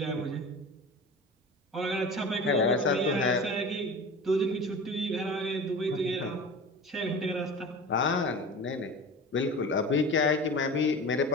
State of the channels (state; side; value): normal; both; correlation 0.34